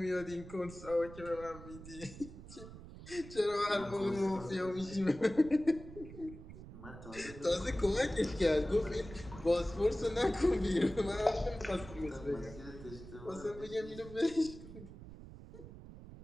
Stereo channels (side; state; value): right; noise; rumble, 14 dB below the sound